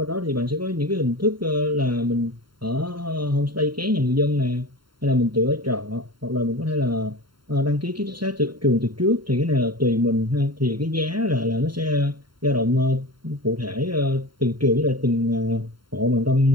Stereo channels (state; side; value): late; left; 0.72 ms